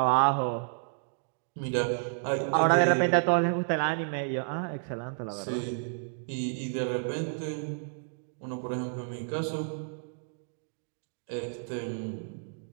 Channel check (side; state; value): left; silent; digital silence